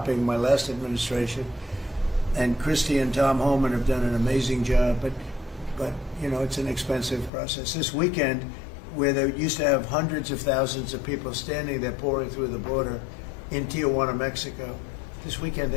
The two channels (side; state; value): right; drops out; at 7.3 s